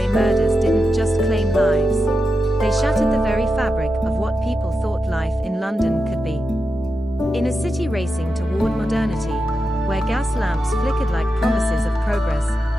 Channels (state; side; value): normal; both; correlation 0.89